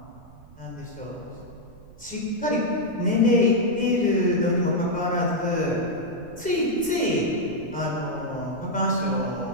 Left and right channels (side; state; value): right; noise; rumble, 21 dB below the sound